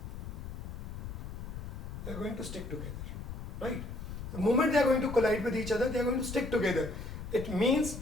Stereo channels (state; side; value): noise; left; rumble, 8 dB below the sound